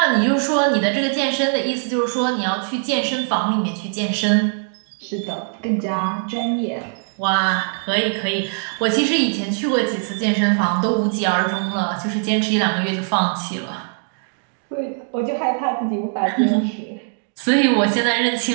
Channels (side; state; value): left; silent; 60 dB below the other